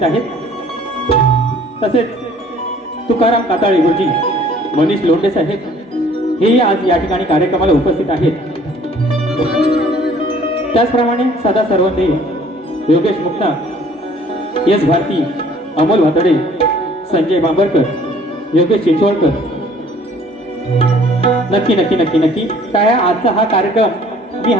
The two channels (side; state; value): both; normal; correlation 0.55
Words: आहेत. तसेच तुकाराम काताळे गुरुजी, मनीष लोंढे साहेब हेही आज या ठिकाणी कार्यक्रमाला उपस्थित आहेत. त्याचप्रमाणे सदा सर्वंदे, योगेश मुक्ता, एस भारती, अमोल भातडे, संजय बांबरकर, योगेश चिंचवडकर. नक्की नक्की नक्की नक्की काय आजचा हा कार्यक्रम मी